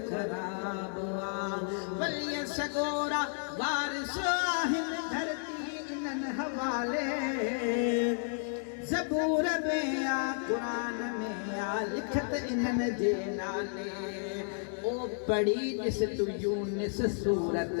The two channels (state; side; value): silent; right; 56 dB below the other